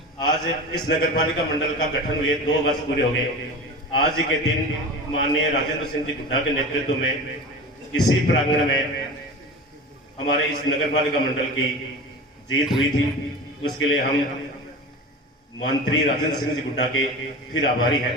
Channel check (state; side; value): normal; both; correlation 0.32